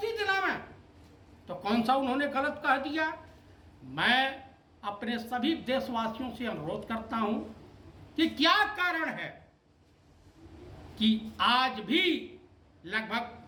दिलावें। तो कौन सा उन्होंने गलत कह दिया? मैं अपने सभी देशवासियों से अनुरोध करता हूं कि क्या कारण है कि आज भी लगभग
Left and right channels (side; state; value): both; identical; correlation 1.00